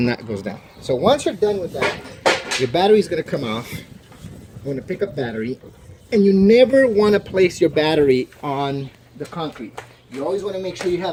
that goes down. So once you're done with that, your battery is going to come off. I'm going to pick up battery, and you never want to place your battery on the concrete. You always want to make sure you have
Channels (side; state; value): both; identical; correlation 1.00